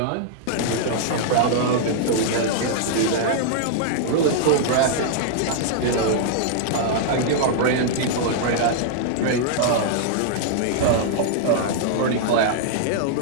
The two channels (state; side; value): different; both; correlation -0.01